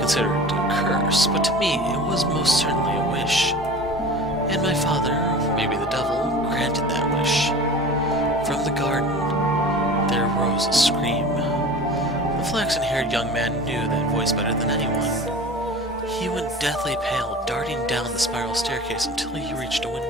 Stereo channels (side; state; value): both; normal; correlation 0.38